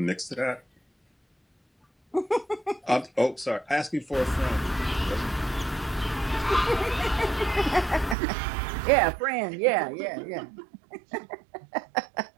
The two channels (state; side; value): drops out; left; at 8.2 s